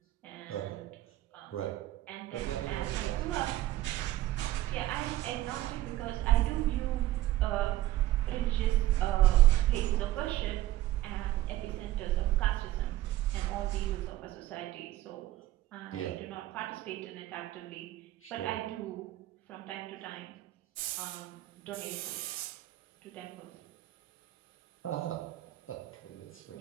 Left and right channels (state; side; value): quieter; left; 15.4 dB